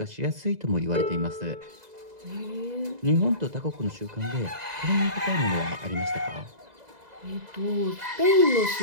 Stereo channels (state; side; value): late; left; 2.0 ms